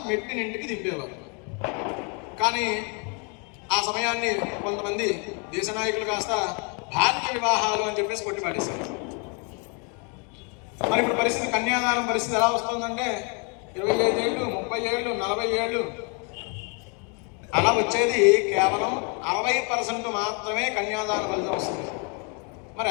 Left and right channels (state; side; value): quieter; right; 35.9 dB